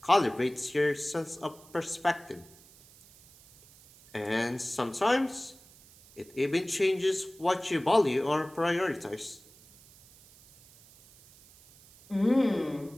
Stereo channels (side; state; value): right; noise; hiss, 25 dB below the sound